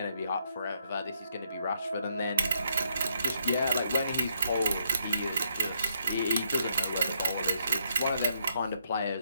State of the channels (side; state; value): both; inverted; correlation -0.74